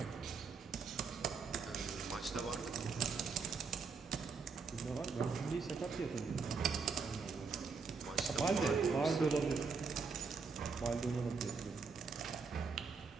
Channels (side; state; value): left; quieter; 4.9 dB